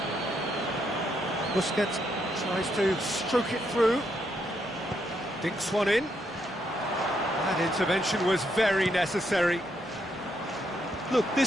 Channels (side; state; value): both; normal; correlation 0.77